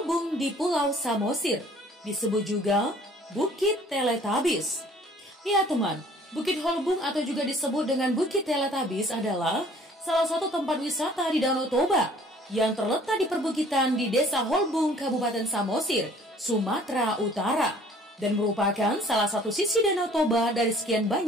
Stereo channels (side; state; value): both; normal; correlation 0.54